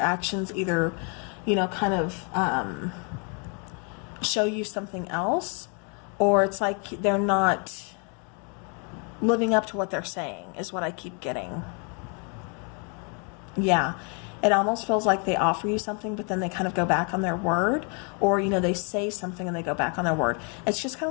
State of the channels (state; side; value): quieter; right; 36.9 dB